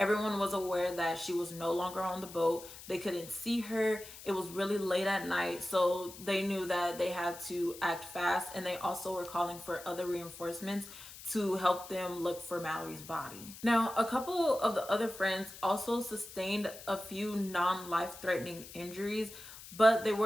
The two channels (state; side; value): noise; left; hiss, 15 dB below the sound